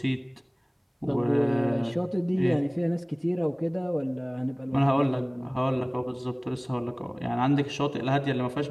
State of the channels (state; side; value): identical; both; correlation 1.00